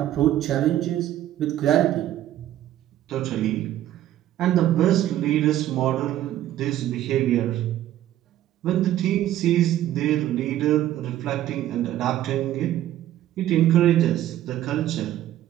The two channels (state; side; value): quieter; left; 12.9 dB